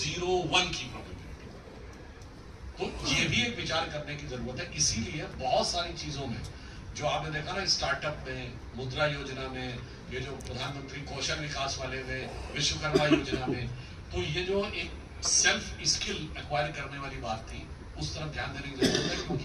की प्रोबेबिलिटी। तो ये भी एक विचार करने की जरूरत है। इसीलिए बहुत सारी चीजों में जो आपने देखा ना, स्टार्टअप में, मुद्रा योजना में, ये जो प्रधानमंत्री कौशल विकास वाले में, विश्वकर्मा योजना में, तो ये जो एक सेल्फ स्किल एक्वायर करने वाली बात थी, उस तरफ ध्यान देने की जरूरत है। क्योंकि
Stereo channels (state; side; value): identical; both; correlation 1.00